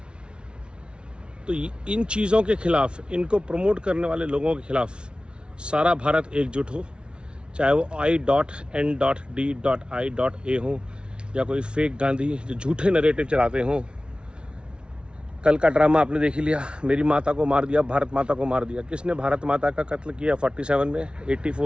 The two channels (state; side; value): late; left; 0.057 ms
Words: तो इन चीज़ों के खिलाफ, इनको प्रमोट करने वाले लोगों के खिलाफ सारा भारत एकजुट हो, चाहे वो I.N.D.I.A हो या कोई फेक गांधी जो झूठे नरेटिव चलाते हों। कल का ड्रामा आपने देख ही लिया, मेरी माता को मार दिया, भारत माता को मार दिया। किसने भारत माता का कत्ल किया 47 में,